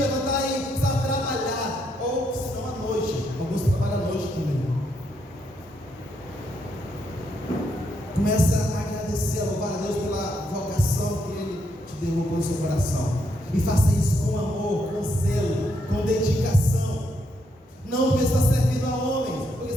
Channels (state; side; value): normal; both; correlation 0.77